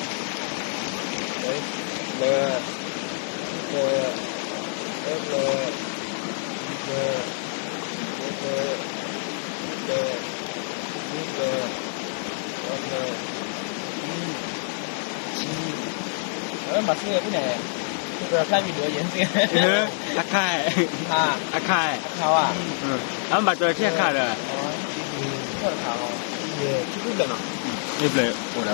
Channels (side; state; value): right; silent; digital silence